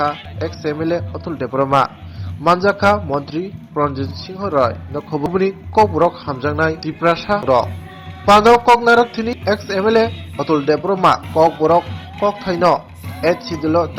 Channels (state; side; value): identical; both; correlation 1.00